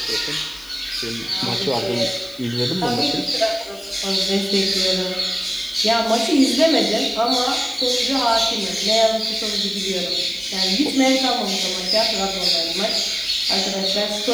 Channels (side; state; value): left; noise; hiss, 22 dB below the sound